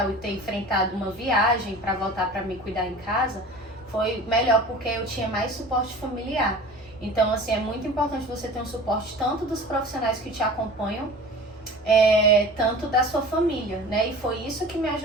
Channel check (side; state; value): both; normal; correlation 0.40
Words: e ter enfrentado uma viagem pra voltar pra me cuidar em casa, foi melhor porque eu tinha mais suporte familiar. Então, assim, é muito importante você ter um suporte tanto dos profissionais que te acompanham, tanto da sua família, né? E foi isso que me